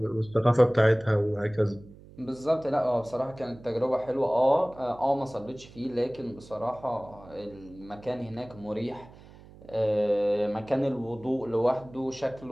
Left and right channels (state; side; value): noise; right; hum, 21 dB below the sound